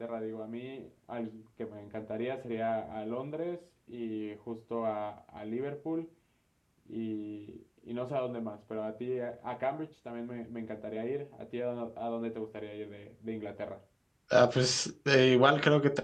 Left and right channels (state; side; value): identical; both; correlation 1.00